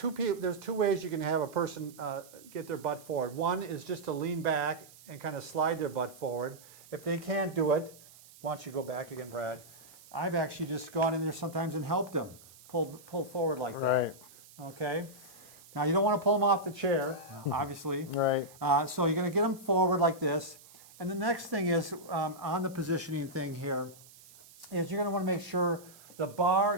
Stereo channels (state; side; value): noise; right; hiss, 22 dB below the sound